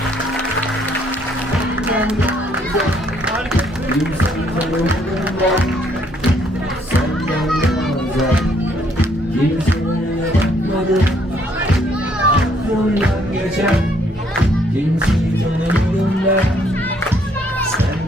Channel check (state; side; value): normal; both; correlation 0.67